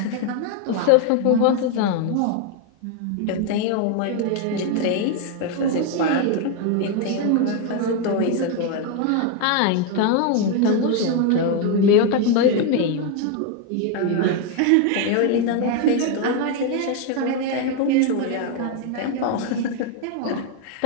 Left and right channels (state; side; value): different; both; correlation 0.01